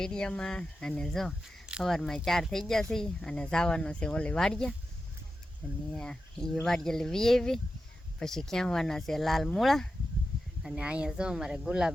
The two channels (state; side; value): normal; both; correlation 0.91